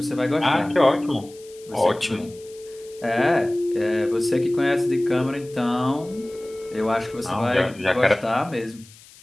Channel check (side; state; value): left; noise; hiss, 23 dB below the sound